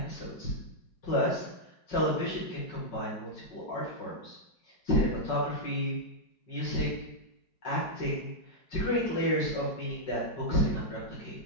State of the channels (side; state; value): right; late; 5.3 ms